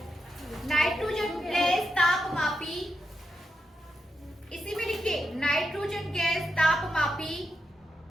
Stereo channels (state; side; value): normal; both; correlation 0.85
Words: लिखिए नाइट्रोजन गैस तापमापी